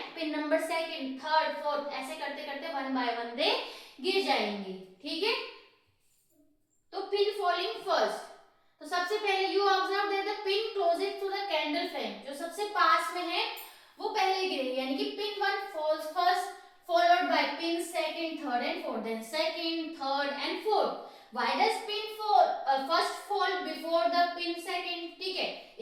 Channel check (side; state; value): both; identical; correlation 1.00